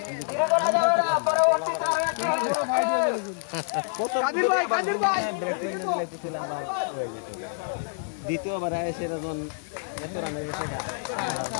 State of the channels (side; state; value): right; silent; 60 dB below the other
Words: দ্বিতীয়বার এসে এত রানের গেছে